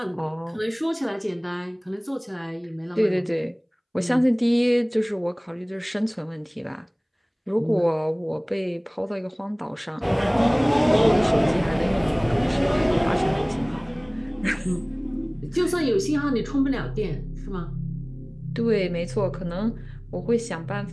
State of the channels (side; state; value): both; identical; correlation 1.00